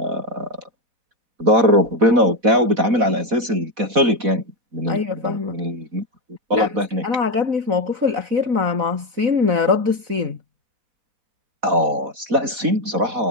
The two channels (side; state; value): left; late; 4.1 ms